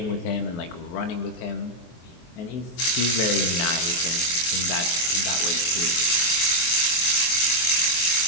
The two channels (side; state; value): right; late; 23 ms